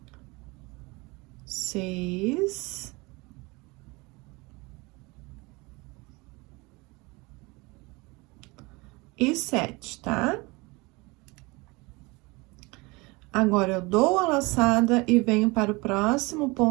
6. E 7, tá? Agora, eu dou a laçada e venho para o próximo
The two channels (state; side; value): quieter; left; 25.1 dB